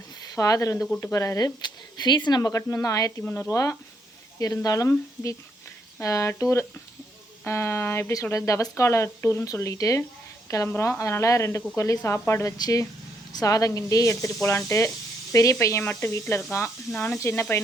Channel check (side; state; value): both; normal; correlation 0.74